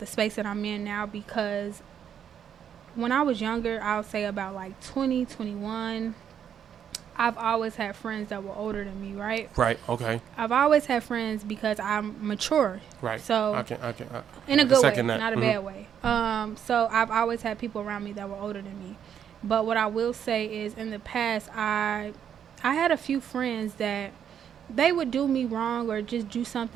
space that I'm in now because. When I was younger, I would say about like 20, 21, I've always had friends that were older than me, right? Right, okay. I've always had friends because I'm mature. Right. So, in a good way, not a bad way. So, I've always had people around me that were older than me. But what I will say is in the past, I had a few friends that they would do me wrong or just do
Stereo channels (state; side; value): quieter; left; 8.7 dB